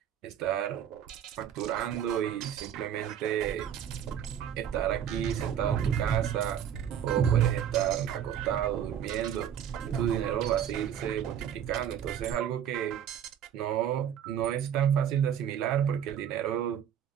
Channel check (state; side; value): quieter; left; 9.3 dB